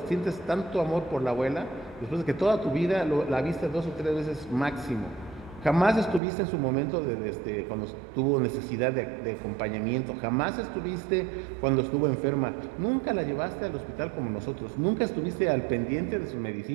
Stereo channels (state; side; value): drops out; left; at 6.2 s